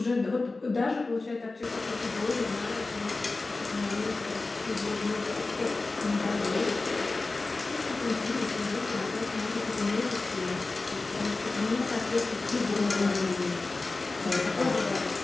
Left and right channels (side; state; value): right; quieter; 3.5 dB